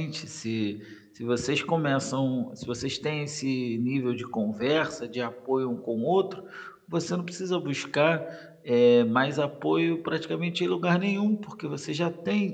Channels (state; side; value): identical; both; correlation 1.00